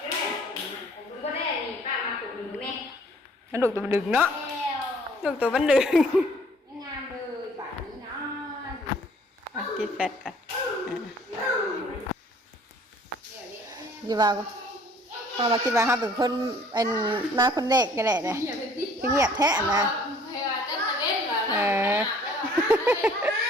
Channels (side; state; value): both; normal; correlation 0.56